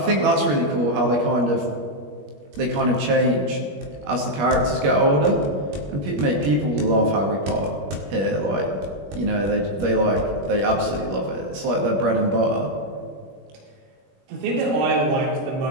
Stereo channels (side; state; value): left; late; 21 ms